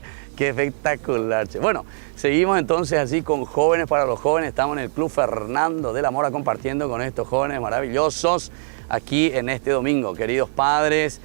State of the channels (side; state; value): left; silent; digital silence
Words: Qué espectacular, che. Bueno, seguimos entonces así con Jóvenes para los Jóvenes. Estamos en el Club Fernando de la Mora compartiendo con estos jóvenes maravillosos aquí en este domingo. Queridos padres,